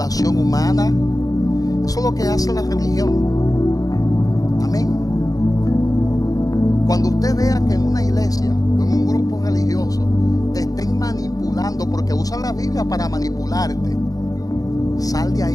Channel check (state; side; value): late; right; 0.17 ms